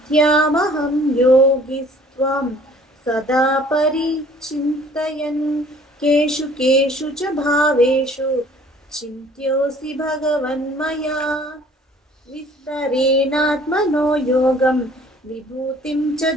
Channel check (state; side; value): normal; both; correlation 0.54